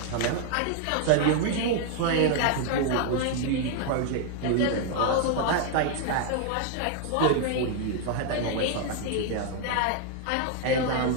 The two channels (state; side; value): different; both; correlation 0.00